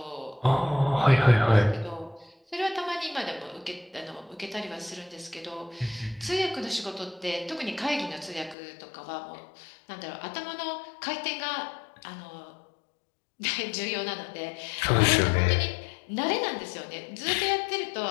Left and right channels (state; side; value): drops out; right; at 8.6 s